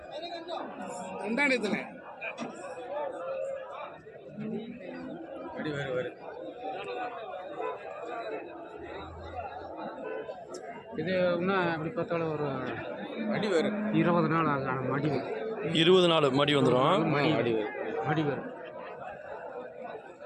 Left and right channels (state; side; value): identical; both; correlation 1.00